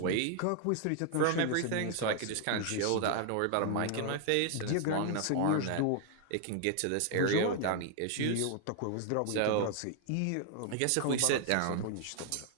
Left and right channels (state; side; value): different; both; correlation 0.00